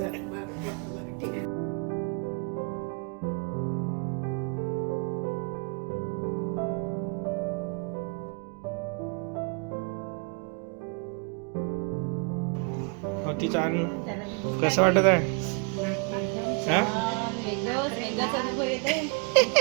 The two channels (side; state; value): left; quieter; 35.3 dB